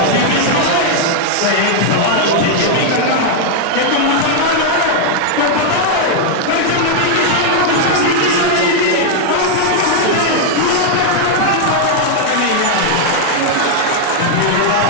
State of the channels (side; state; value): both; different; correlation 0.00